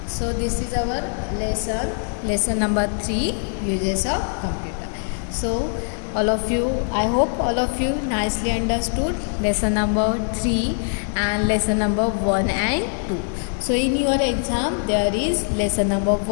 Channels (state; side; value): silent; right; 58 dB below the other